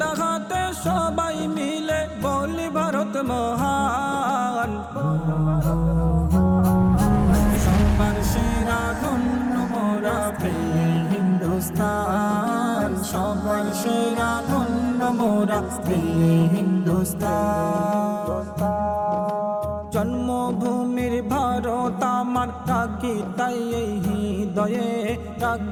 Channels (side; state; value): both; identical; correlation 1.00